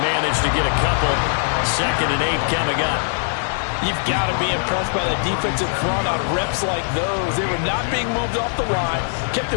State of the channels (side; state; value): right; silent; 58 dB below the other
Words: manage to get a couple. Second and 8 coming up. You've got to be impressed by the defensive front on reps like those. They were not being moved off the line, kept